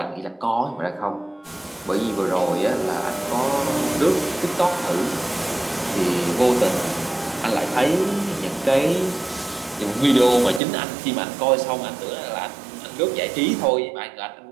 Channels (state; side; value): drops out; left; at 10.6 s